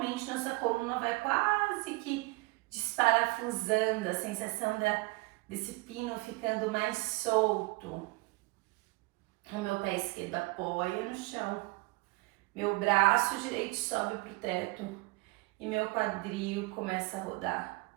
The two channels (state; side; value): quieter; left; 24.6 dB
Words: nossa coluna vai quase que desparafusando, a sensação desse pino ficando mais solto. O meu pé esquerdo apoia no chão, meu braço direito sobe para o teto e meu quadril começa a rodar.